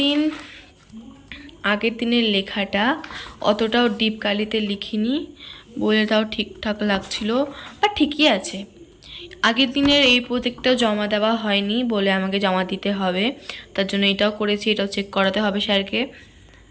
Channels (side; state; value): both; identical; correlation 1.00